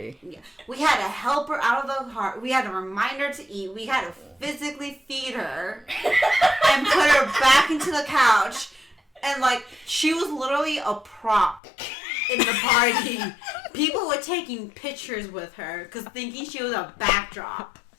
her. Yeah, we had to help her out of the heart. We had to remind her to eat. We had to physically feed her and put her back into the couch. And like she was literally a prop in the party. People were taking pictures with her because thinking she was a backdrop.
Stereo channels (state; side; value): drops out; right; at 11.6 s